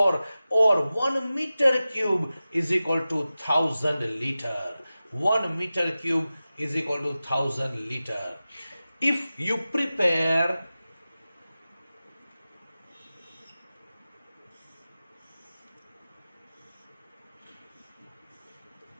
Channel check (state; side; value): inverted; both; correlation -0.95